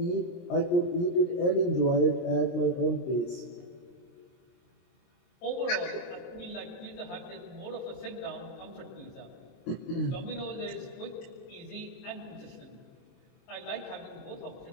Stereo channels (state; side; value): late; right; 23 ms